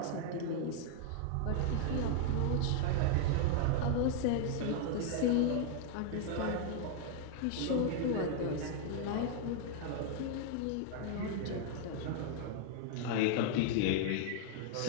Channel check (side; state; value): both; different; correlation 0.00